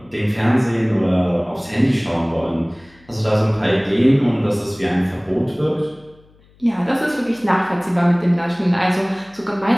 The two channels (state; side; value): noise; left; hum, 30 dB below the sound